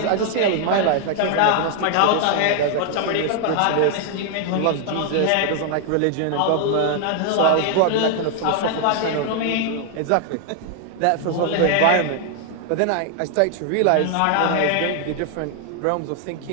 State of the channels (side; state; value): both; different; correlation 0.00